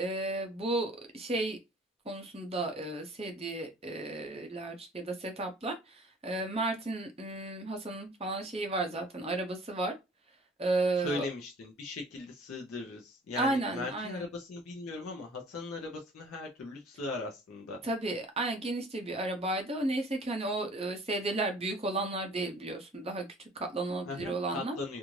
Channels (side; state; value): both; normal; correlation 0.50